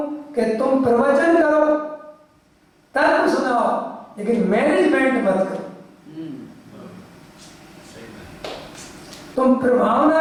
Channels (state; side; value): identical; both; correlation 1.00